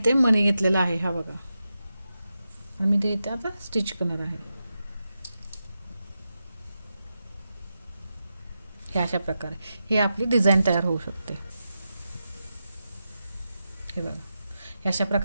ते मणी घेतलेला आहे, हा बघा. आणि मी ते इथे आता स्टिच करणार आहे. हे अशा प्रकारे हे आपली डिझाईन तयार होऊ शकते. हे बघा, हे अशा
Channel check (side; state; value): both; inverted; correlation -0.89